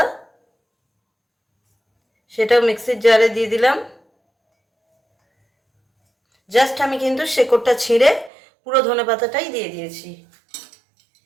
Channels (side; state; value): left; drops out; at 8.3 s